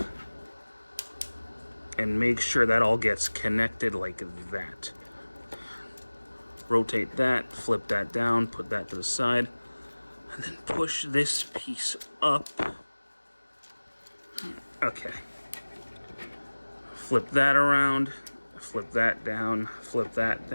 And make sure that all gets connected like that. Rotate that, flip that down, put that to the side, and then push this piece up. Okay. Flip that around, flip that down, flip that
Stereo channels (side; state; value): both; inverted; correlation -1.00